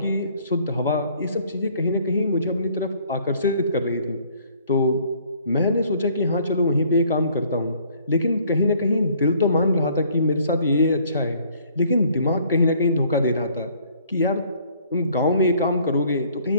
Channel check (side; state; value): both; inverted; correlation -0.60